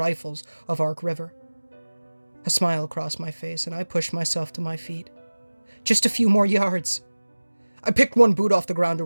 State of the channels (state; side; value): inverted; both; correlation -1.00